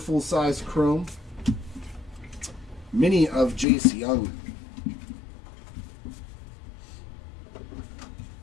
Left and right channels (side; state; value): right; drops out; at 3.7 s